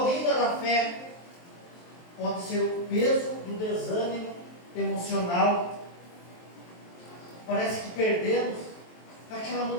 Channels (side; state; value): right; late; 23 ms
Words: da fé? Pode ser o peso do desânimo emocional. Parece que perdemos aquela